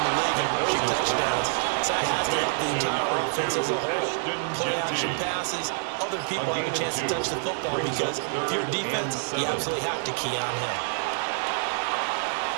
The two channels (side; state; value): left; silent; 60 dB below the other